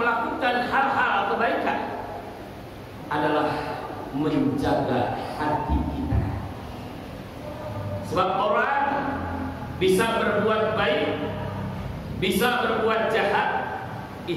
hal-hal kebaikan adalah menjaga hati kita. Sebab orang bisa berbuat baik, bisa berbuat jahat,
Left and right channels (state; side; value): identical; both; correlation 1.00